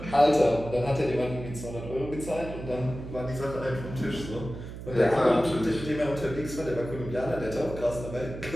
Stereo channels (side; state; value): right; noise; hum, 10 dB below the sound